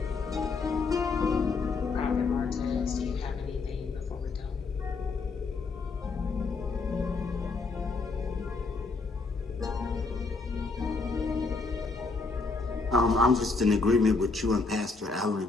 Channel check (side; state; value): right; quieter; 4.1 dB